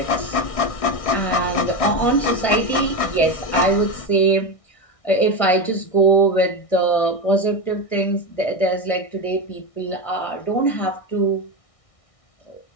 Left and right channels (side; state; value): right; late; 1.6 ms